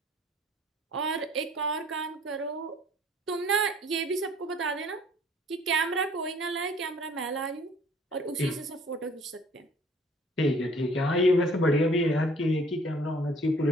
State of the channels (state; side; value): normal; both; correlation 0.55